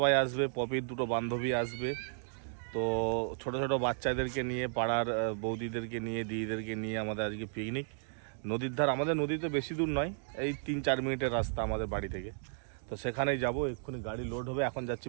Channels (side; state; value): left; silent; digital silence